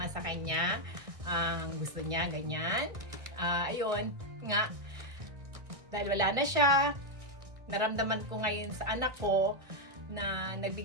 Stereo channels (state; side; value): late; left; 1.6 ms